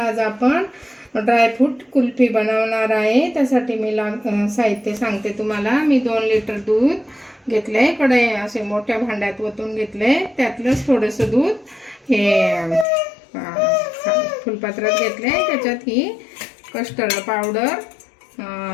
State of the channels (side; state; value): right; drops out; at 12.9 s